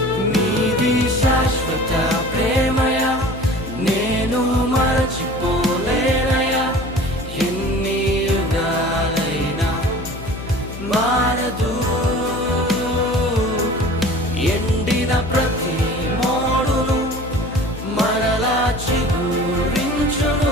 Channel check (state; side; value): noise; left; hum, 11 dB below the sound